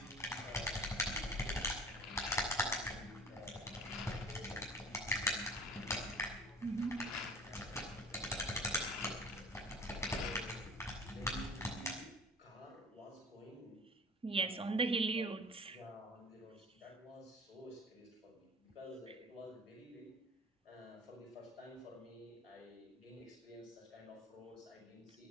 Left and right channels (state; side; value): normal; both; correlation 0.44